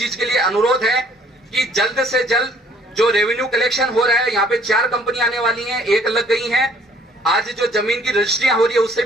के लिए अनुरोध है कि जल्द से जल्द जो रेवेन्यू कलेक्शन हो रहा है, यहाँ पे 4 कंपनी आने वाली हैं, 1 लग गई हैं। आज जो जमीन की रजिस्ट्रियां हो रही है उससे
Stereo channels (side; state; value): both; normal; correlation 0.59